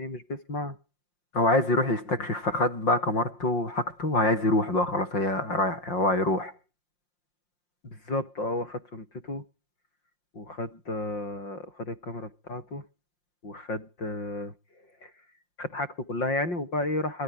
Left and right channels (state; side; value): late; right; 5.7 ms